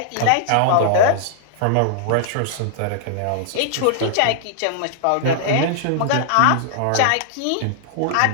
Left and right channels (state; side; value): different; both; correlation -0.01